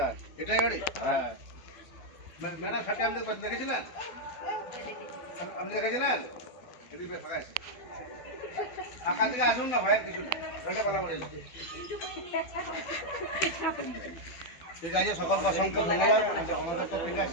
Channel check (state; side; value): late; right; 12 ms